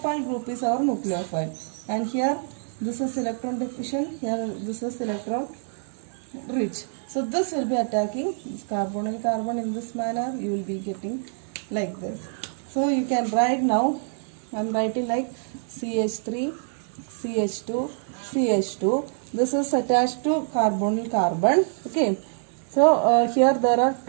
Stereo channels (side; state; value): left; silent; 61 dB below the other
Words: group is our nucleophile. And here this is electron deficient, here this is electron rich. So this will be attacking this carbonyl carbon in this manner. You will be getting like this. So you can write now. I am writing like CH3, CH2, CH2. This is attached to carbonyl carbon. Okay. So here there are